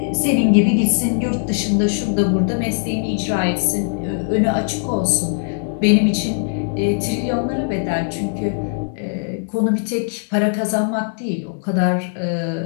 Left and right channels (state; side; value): silent; right; digital silence